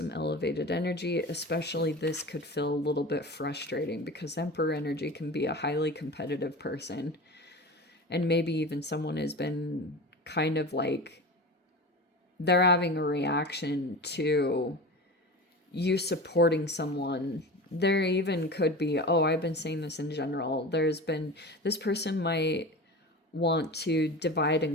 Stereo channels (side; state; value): both; normal; correlation 0.31